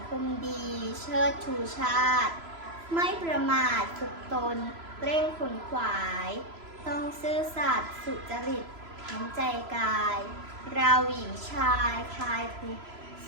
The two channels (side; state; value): left; late; 3.0 ms